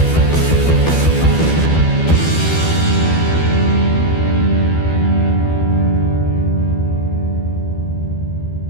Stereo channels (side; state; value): right; late; 12 ms